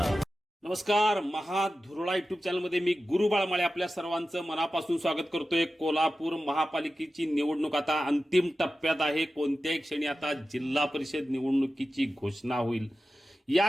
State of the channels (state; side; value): normal; both; correlation 0.94